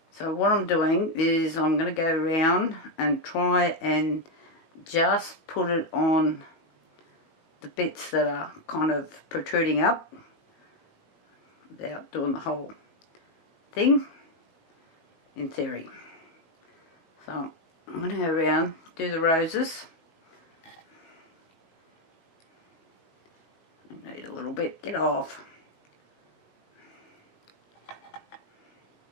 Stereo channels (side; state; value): right; late; 19 ms